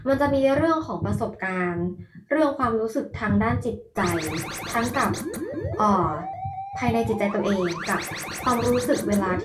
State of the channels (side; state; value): both; identical; correlation 1.00